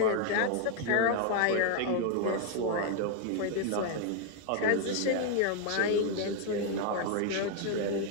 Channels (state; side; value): different; both; correlation 0.00